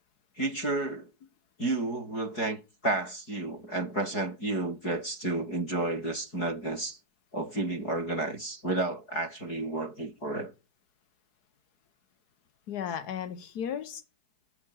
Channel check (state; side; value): late; right; 4.7 ms